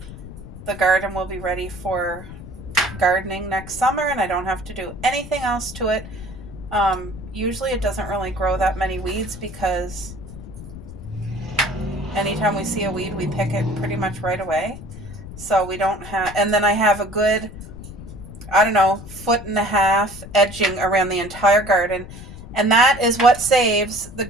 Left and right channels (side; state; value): left; noise; rumble, 13 dB below the sound